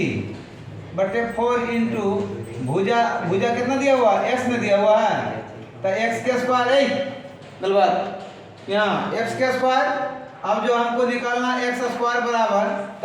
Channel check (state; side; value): identical; both; correlation 1.00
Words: इंटू भुजा कितना दिया हुआ है? x में दिया हुआ है, तो x के स्क्वायर है गलबात यहाँ x के स्क्वायर। अब जो हमको निकालना x स्क्वायर बराबर,